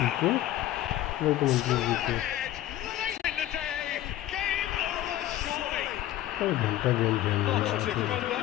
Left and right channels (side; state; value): right; quieter; 13.8 dB